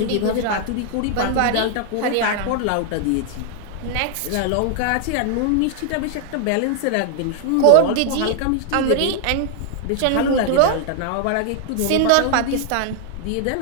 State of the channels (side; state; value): both; different; correlation 0.00